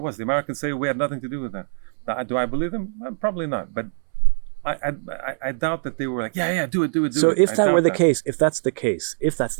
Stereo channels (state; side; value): silent; left; 62 dB below the other